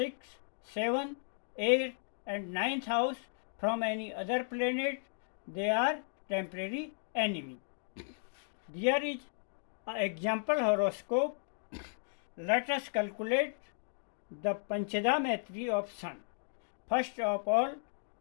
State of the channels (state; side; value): silent; right; digital silence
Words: seventh, eighth, and ninth house from any other planet, they are temporary enemy. There is an example horoscope. Let us calculate the Panchada Maitri of Sun. First of all,